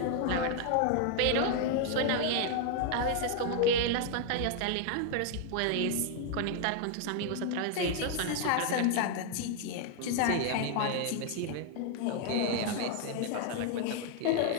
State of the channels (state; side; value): different; both; correlation 0.00